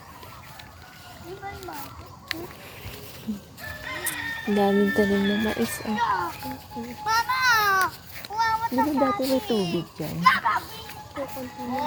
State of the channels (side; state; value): both; identical; correlation 1.00